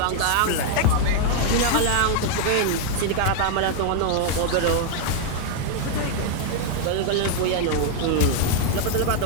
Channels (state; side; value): different; both; correlation 0.00